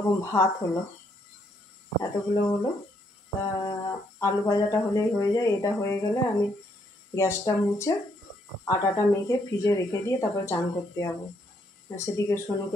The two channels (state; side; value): normal; both; correlation 0.73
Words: ভাত হলো, এতগুলো হলো। তা আলু ভাজাটা হলেই হয়ে যায়। এটা হয়ে গেলে আমি গ্যাসটা মুছে আটাটা মেখে ফ্রিজে রেখে দিয়ে তারপর চান করতে যাবো। সেদিকে